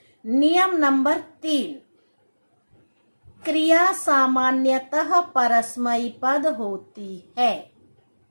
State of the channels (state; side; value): inverted; both; correlation -1.00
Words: नियम नंबर 3, क्रिया सामान्यतः परस्मैपद पद होती है।